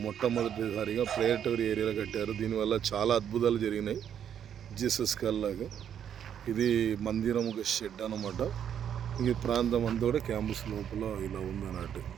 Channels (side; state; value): left; quieter; 9.0 dB